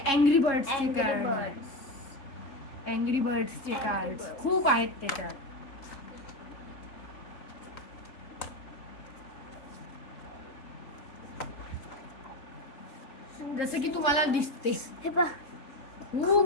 अँग्री बर्ड्सचे कार्ड, अँग्री बर्ड्सचे कार्ड खूप आहेत त्याच्यात. जसं की तुम्हाला दिसते हे पहा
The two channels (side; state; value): right; late; 3.6 ms